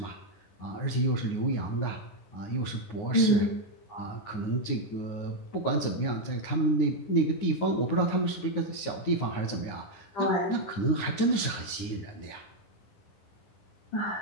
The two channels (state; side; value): late; right; 9.7 ms